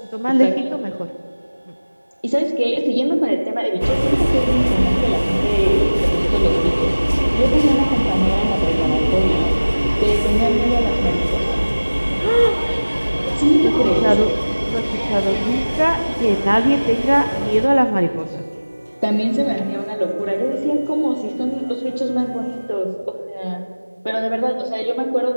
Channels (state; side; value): inverted; both; correlation -1.00